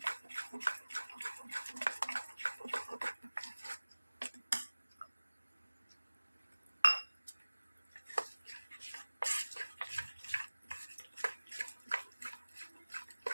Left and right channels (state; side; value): inverted; both; correlation -1.00